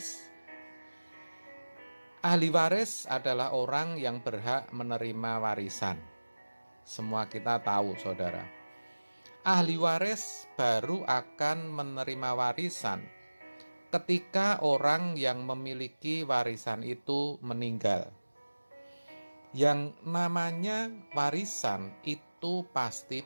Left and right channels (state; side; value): inverted; both; correlation -1.00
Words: Ahli waris adalah orang yang berhak menerima warisan. Semua kita tahu, saudara. Ahli waris baru akan menerima warisan ketika orang yang memiliki warisan itu meninggal. Yang namanya warisan itu pasti